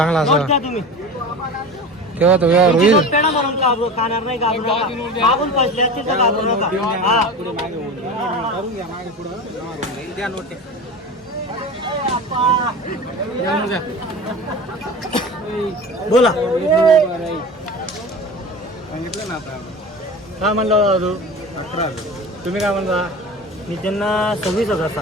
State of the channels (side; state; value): both; normal; correlation 0.32